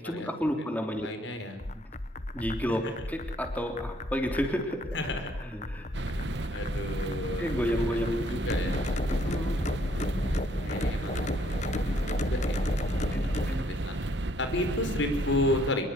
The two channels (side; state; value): both; normal; correlation 0.66